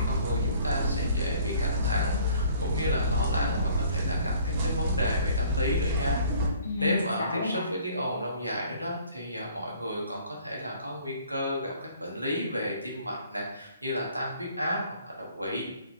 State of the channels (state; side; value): inverted; both; correlation -0.55